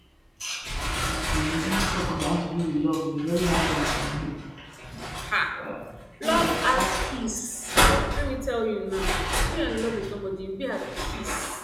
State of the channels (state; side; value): identical; both; correlation 1.00